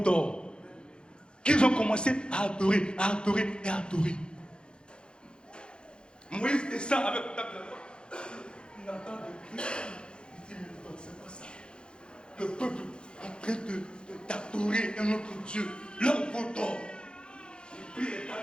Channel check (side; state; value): right; late; 0.052 ms